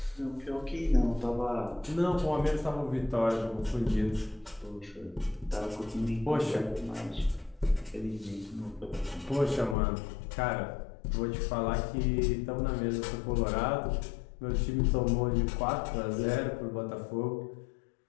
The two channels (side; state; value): right; drops out; at 9.8 s